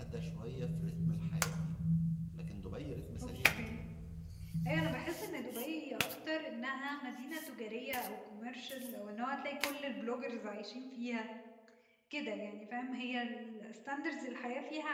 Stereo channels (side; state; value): both; identical; correlation 1.00